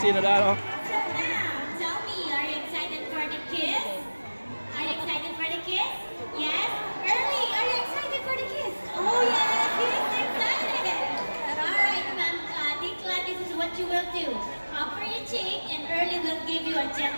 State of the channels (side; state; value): both; inverted; correlation -1.00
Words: na daw. So now, tell me, are you excited for the kiss? Are you excited for the kiss? Yes? Early, are you excited for the kiss? Oh yes, he's excited. Alright, ma'am, Dikla, this is what you will do. Offer your cheek and Early will give you a